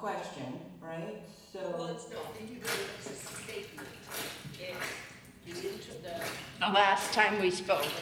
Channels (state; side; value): identical; both; correlation 1.00